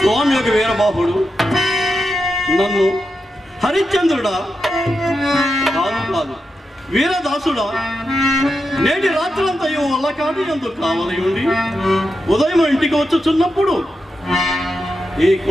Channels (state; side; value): normal; both; correlation 0.88